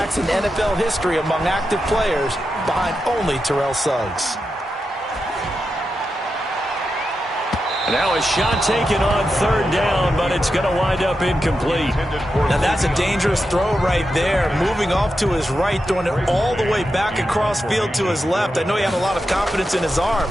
in NFL history among active players, behind only Terrell Suggs. Now a shot taken on 3rd down, but it's going to wind up incomplete. Now that's a dangerous throw right there. Moving off to his right, throwing it all the way back across field to his left. I know he had a lot of confidence in his arm.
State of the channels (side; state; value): both; normal; correlation 0.88